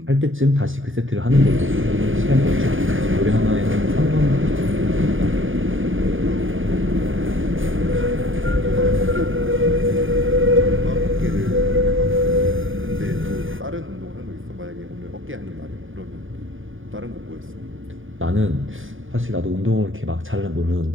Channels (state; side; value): late; left; 0.58 ms